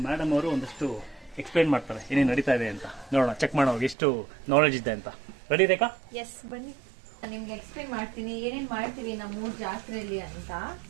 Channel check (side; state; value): left; drops out; at 4.0 s